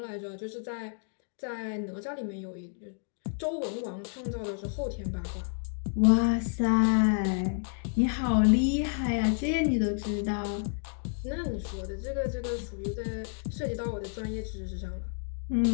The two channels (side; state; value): right; silent; 56 dB below the other